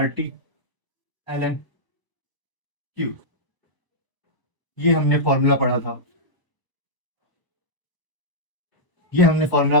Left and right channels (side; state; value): right; late; 1.0 ms